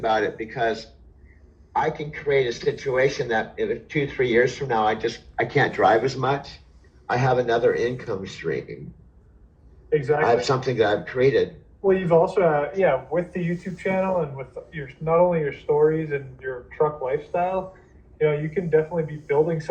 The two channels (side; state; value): both; identical; correlation 1.00